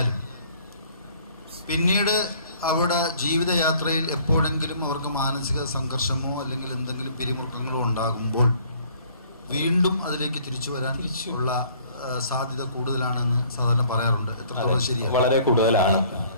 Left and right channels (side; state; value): both; inverted; correlation -0.57